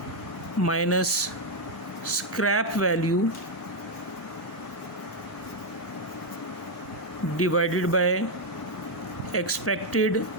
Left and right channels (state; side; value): normal; both; correlation 0.02